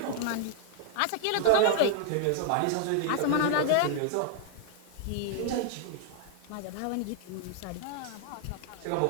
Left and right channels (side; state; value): both; different; correlation 0.00